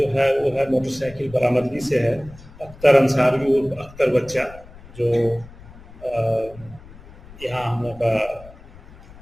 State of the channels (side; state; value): left; noise; rumble, 20 dB below the sound